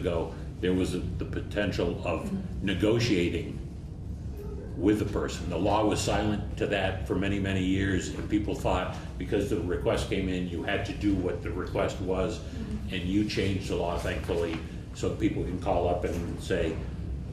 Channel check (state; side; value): identical; both; correlation 1.00